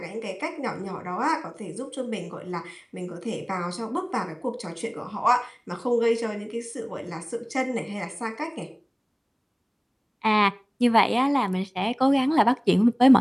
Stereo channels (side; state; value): both; identical; correlation 1.00